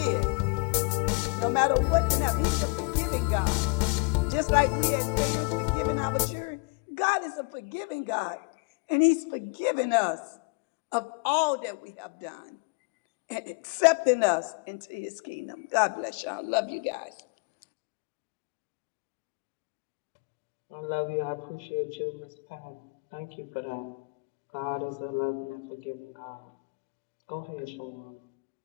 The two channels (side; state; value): right; quieter; 30.9 dB